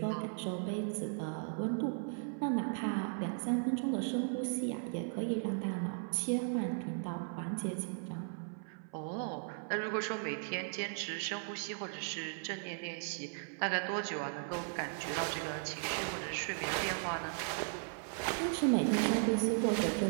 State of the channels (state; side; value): silent; left; 53 dB below the other